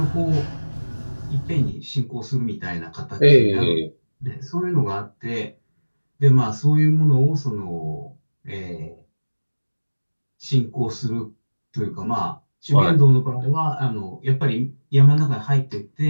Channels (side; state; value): both; inverted; correlation -1.00